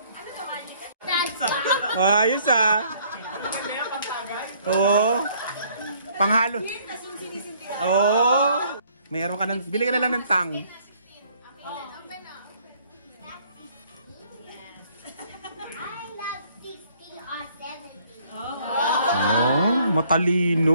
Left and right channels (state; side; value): inverted; both; correlation -0.62